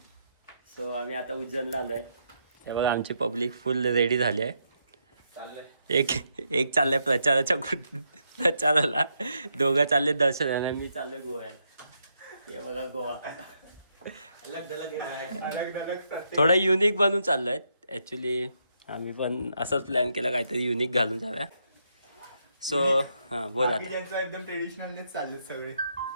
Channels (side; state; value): both; inverted; correlation -0.79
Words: So आम्ही आता उज्जैनला आलो आहे. हे बघा आमची पब्लिक फुल रेडी झाली आहे. एक चाललंय प्रचाराला, दोघं चालले दर्शनाला, मी चाललोय गोव्याला. हे बघा गोवा थोडं युनिक बनून चाललोय. ॲक्च्युली आम्ही पण असंच प्लॅन केला, काहीतरी युनिक घालून जाऊया. सो हां बोला. एकदम ट्रेडिशनलच चाललेत सगळे.